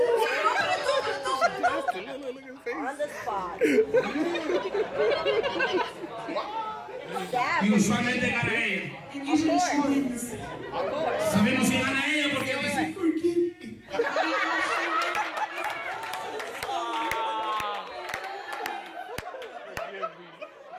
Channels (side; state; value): both; identical; correlation 1.00